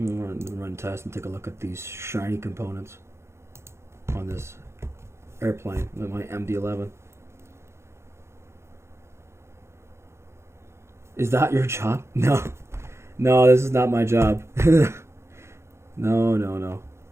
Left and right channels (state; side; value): late; left; 0.13 ms